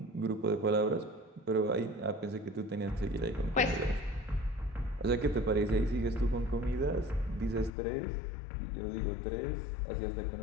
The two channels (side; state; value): right; drops out; at 7.7 s